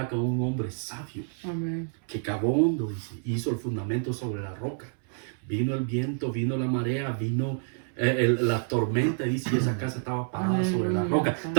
con un hombre sabio Amén. que cavó hondo, dice, hizo el fundamento sobre la roca. Vino el viento, vino la marea, vino la tormenta, dice, y esa casa estaba parada sobre la roca.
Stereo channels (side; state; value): left; silent; 59 dB below the other